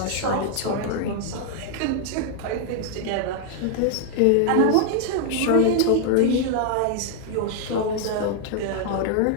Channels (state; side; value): different; both; correlation 0.00